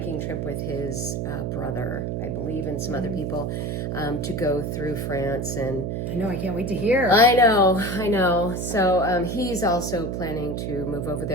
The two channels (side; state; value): right; noise; hum, 2 dB below the sound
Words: trip with his brother, I believe, and some other people to go through France. And I know, I can't wait to hear. I know. So he's also planning to move over